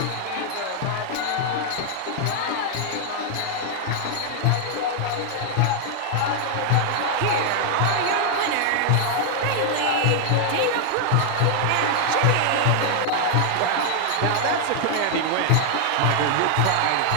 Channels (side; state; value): both; different; correlation 0.00